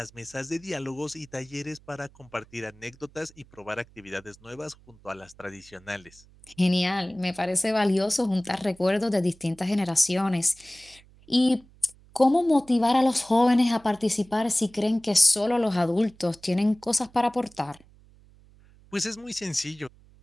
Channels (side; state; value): right; noise; hum, 27 dB below the sound